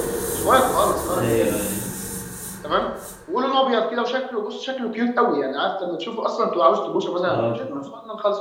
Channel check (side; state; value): both; identical; correlation 1.00